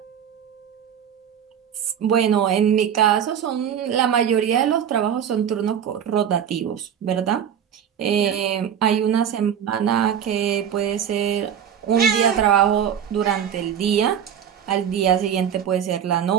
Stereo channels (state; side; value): quieter; left; 8.7 dB